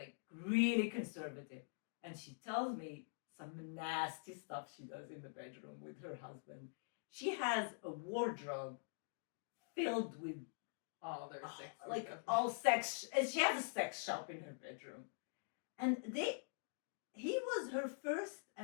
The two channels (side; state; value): right; silent; digital silence